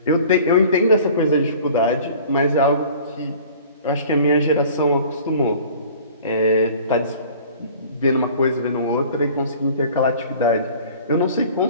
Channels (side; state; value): both; inverted; correlation -0.47